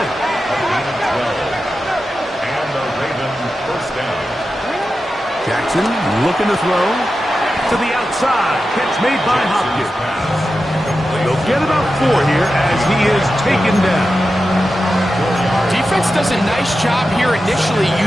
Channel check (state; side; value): normal; both; correlation 0.91